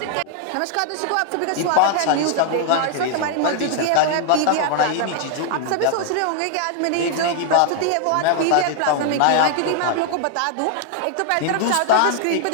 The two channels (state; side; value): different; both; correlation 0.00